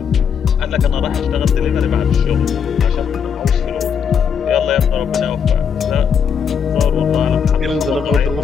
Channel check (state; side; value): quieter; right; 7.1 dB